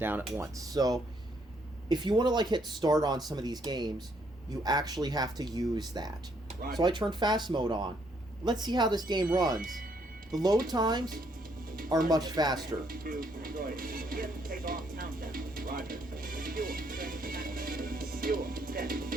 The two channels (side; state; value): both; normal; correlation 0.70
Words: at once. So if you want to like hit start on some of these games, you actually have to use that. Right. So I turned fast mode on. Let's see how this game runs. The load times are much faster.